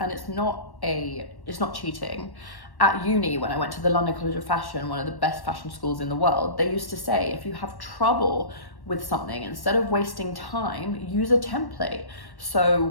it's not cheating. At uni, when I went to the London College of Fashion, one of the best fashion schools in the world, they used to say, if you have trouble with something, instead of wasting time, use a template. So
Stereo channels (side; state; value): right; late; 1.1 ms